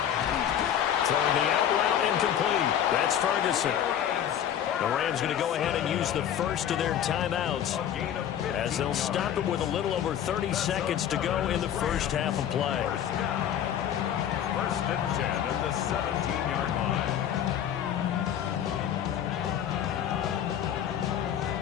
Throwing the out route incomplete. That's Ferguson. The Rams going to go ahead and use the first of their timeouts as they'll stop it with a little over 30 seconds to go in the first half of play. 1st and 10 at the 17-yard line.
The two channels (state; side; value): quieter; right; 9.8 dB